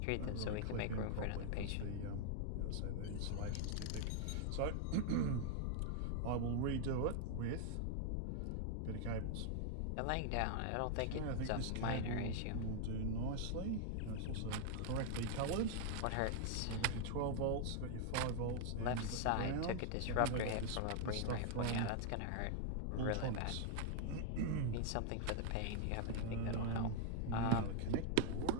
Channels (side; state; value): both; different; correlation 0.00